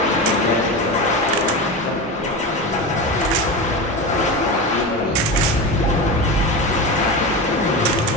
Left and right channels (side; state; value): both; normal; correlation 0.23